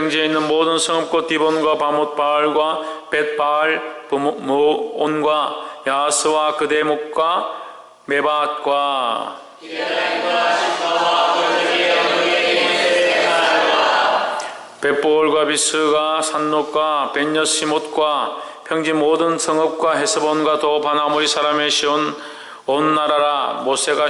있는 모든 성읍 곧 디본과 바못 바알과 벳바알 부모온과 야스와 그대목과 메바앗과 벳보올과 비스가 산롯과 벤여시못과 평지 모든 성읍과 헤스본과 또 바나모리 사람의 시온 온 나라라.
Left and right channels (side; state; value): both; identical; correlation 1.00